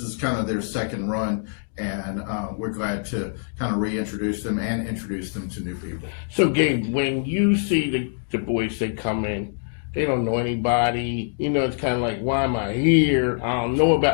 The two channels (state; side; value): silent; right; digital silence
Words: is kind of their second run, and we're glad to kind of reintroduce them and introduce them to new people. So, Gabe, when you see the boys that come in, They don't know anybody. You know, it's kind of like, why am I here? I don't know